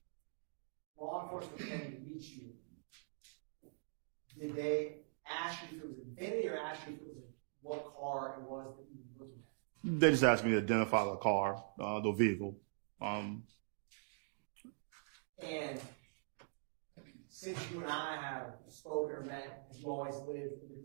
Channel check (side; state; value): left; silent; digital silence